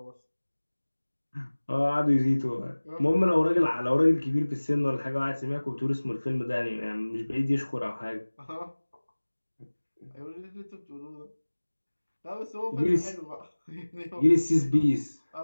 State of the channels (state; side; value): inverted; both; correlation -1.00